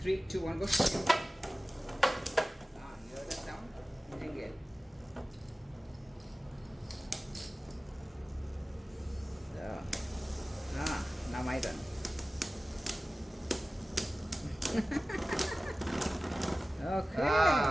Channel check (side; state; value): both; normal; correlation 0.96